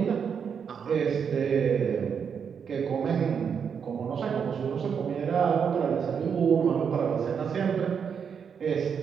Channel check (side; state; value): left; quieter; 6.9 dB